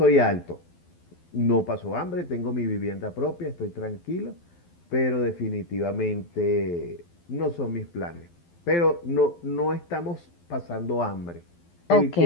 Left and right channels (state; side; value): late; right; 12 ms